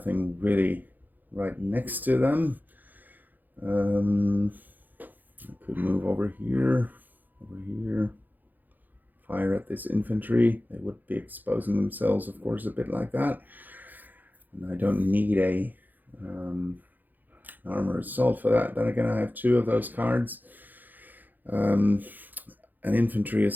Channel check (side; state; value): left; late; 0.085 ms